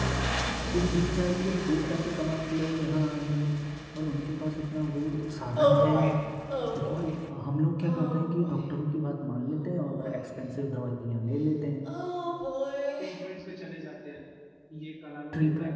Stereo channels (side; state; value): both; identical; correlation 1.00